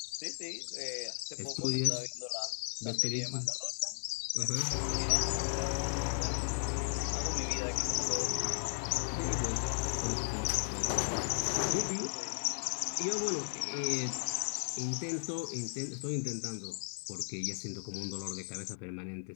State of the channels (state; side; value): silent; right; 54 dB below the other